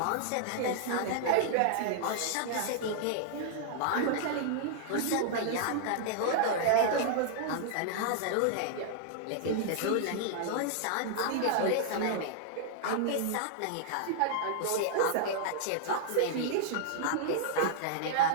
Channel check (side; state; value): both; different; correlation -0.01